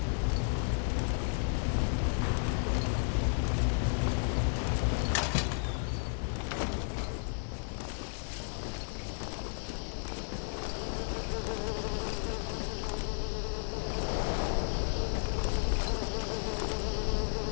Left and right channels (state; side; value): silent; right; 56 dB below the other